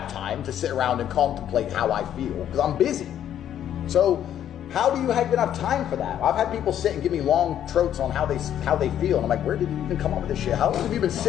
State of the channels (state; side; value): quieter; right; 10.5 dB